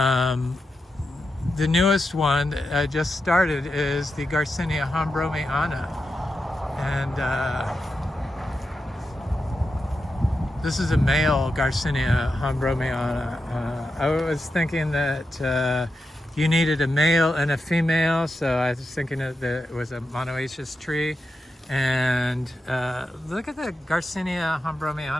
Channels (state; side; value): normal; both; correlation 0.88